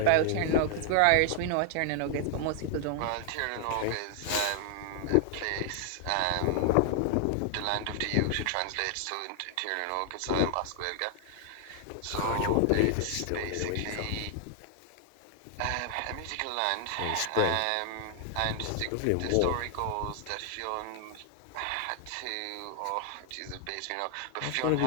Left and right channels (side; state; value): both; different; correlation 0.00